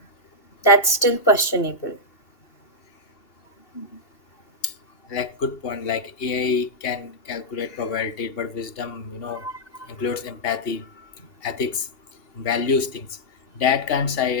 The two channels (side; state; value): right; late; 2.8 ms